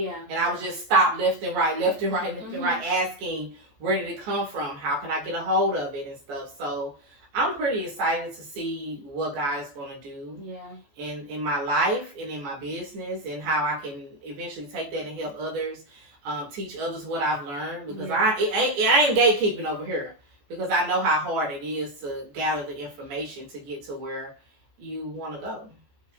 And I was just stopped left and right, asking, where did it come from? How can I get a hold of it and stuff? So I'm pretty excited to see what God is going to do in my life and in my business, and how I can eventually take that and help others, teach others what I've learned, because I ain't gatekeeping over here, because I know how hard it is to gather the information to get to where you want to go.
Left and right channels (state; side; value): late; left; 14 ms